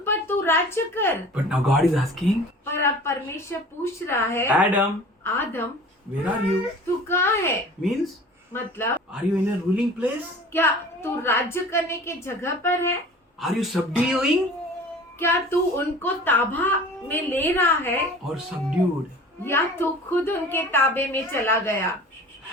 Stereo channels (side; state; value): both; normal; correlation 0.42